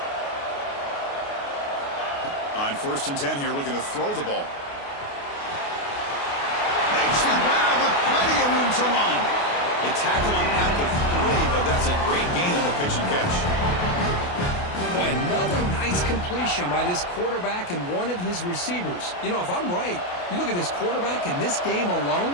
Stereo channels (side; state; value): right; late; 28 ms